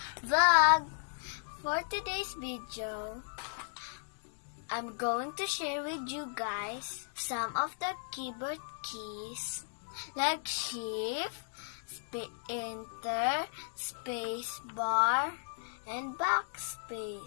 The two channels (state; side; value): silent; right; digital silence